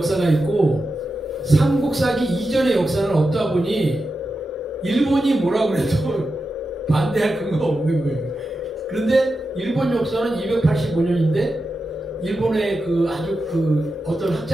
있고 삼국사기 이전의 역사는 없다 보니 일본이 뭐라고 해도 반대할 근거가 없는 거예요. 그런데 일본 역사는 285년인데 일본의 그 아주 그 어떤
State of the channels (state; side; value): normal; both; correlation 0.90